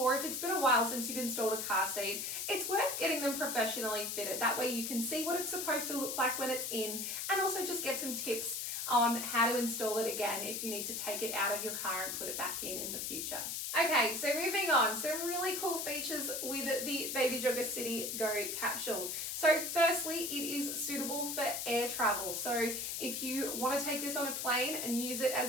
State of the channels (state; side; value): noise; left; hiss, 3 dB below the sound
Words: if it's been a while since you've installed a car seat, it's worth getting them professionally fitted. That way you can see what it's supposed to look like when it's in, and also just get some tips on how to install it again if you need to take it out of your car and put it back in the future. Okay, so moving on, some really cool features with the Baby Jogger City Go capsule. So firstly, it is suitable for air travel. So if you want to take this on a plane and use it